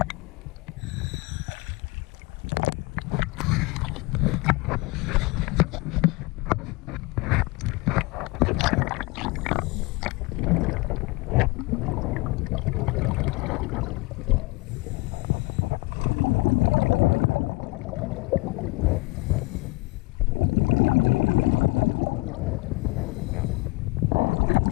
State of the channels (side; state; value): right; quieter; 24.0 dB